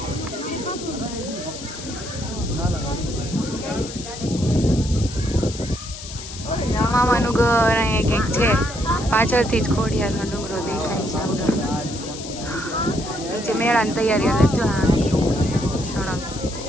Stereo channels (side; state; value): left; noise; hiss, 12 dB below the sound